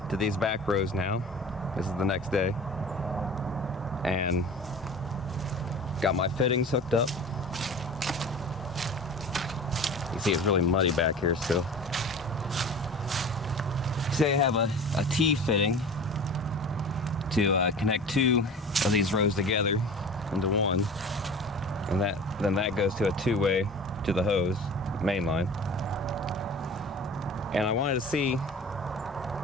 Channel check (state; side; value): normal; both; correlation 0.39